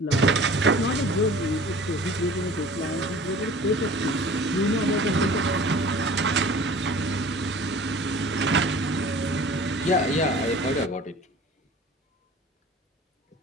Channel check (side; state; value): both; normal; correlation 0.45